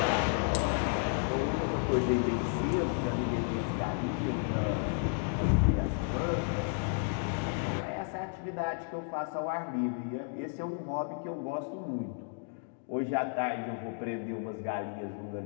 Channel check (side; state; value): right; silent; 56 dB below the other